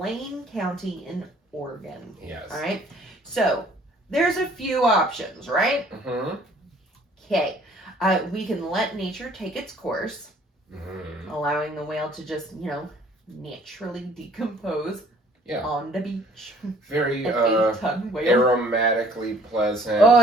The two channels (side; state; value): both; normal; correlation 0.57